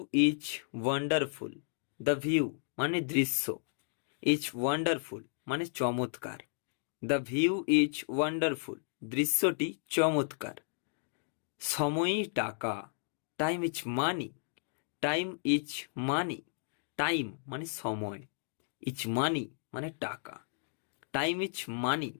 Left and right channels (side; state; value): right; silent; digital silence